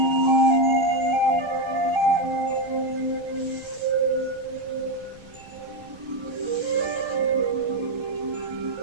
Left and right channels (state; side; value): noise; right; rumble, 24 dB below the sound